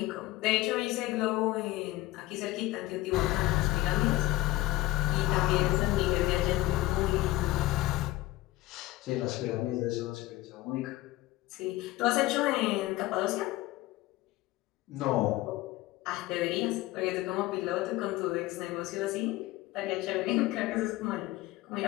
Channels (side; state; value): right; quieter; 17.3 dB